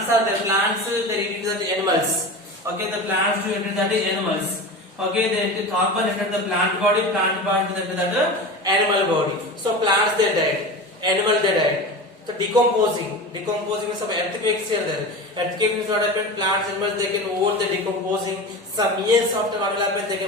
are the plants, they enter the animals. Okay, the plants to enter the animals. Okay, the carbon enter the plant body to enter the animal body. So plants they died, animal they died. So decomposing means some earthquakes here there. Earthquake means what happened? Plants, animals they can hold the decomposing. Some years after what will happen, they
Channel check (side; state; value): both; normal; correlation 0.29